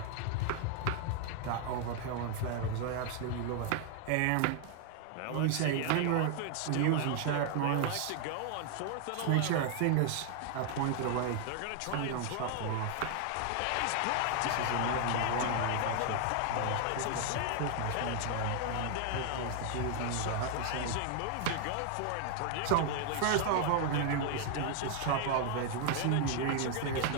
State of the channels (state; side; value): different; both; correlation 0.00